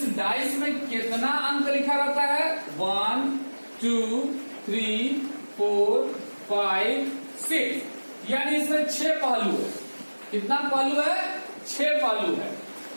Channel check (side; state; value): both; inverted; correlation -1.00